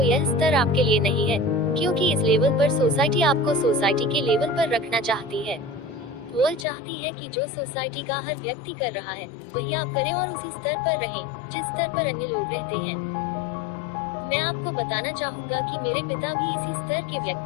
यह स्तर आपके लिए नहीं है, क्योंकि इस लेवल पर सोसाइटी आपको सोसाइटी के लेवल पर रखना चाहती है। वह चाहती है कि जो सोसाइटी का हर व्यक्ति कर रहा है वही आप करें और उसी स्तर पर रहें जिस स्तर पर अन्य लोग रहते हैं। मैं आपको बताना चाहूँगा कि मेरे पिता भी इसी स्तर के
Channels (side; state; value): right; drops out; at 6.7 s